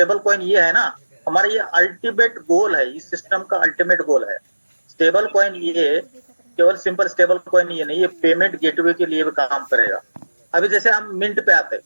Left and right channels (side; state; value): both; inverted; correlation -1.00